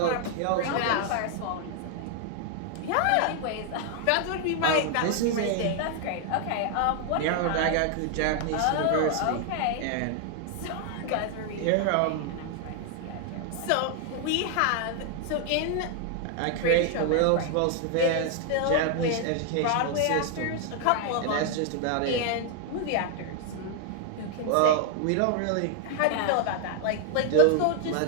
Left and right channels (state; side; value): different; both; correlation 0.00